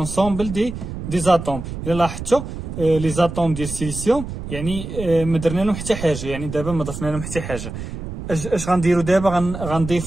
دي زاتوم. الا لاحظتوا لي زاتوم ديال السيليسيوم يعني ما درنا لهم حتى حاجه، يعني دابا ما ضفنا لهم حتى حاجه. اش غنديروا دابا؟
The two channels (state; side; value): noise; right; rumble, 8 dB below the sound